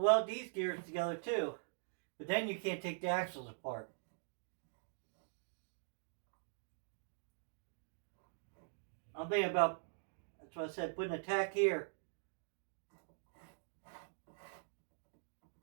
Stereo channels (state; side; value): silent; left; digital silence